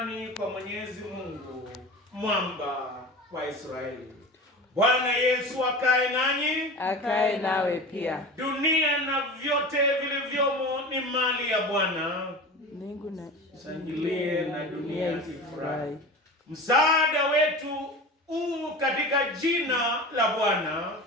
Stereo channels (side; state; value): both; normal; correlation 0.32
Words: kwa Mwenyezi Mungu, mwamba wa Israeli. Bwana Yesu akae nanyi, akae nawe pia. Dunia na vyote vilivyomo ni mali ya Bwana. Mbingu na shangilie na dunia ifurahi. Msaada wetu katika jina la Bwana.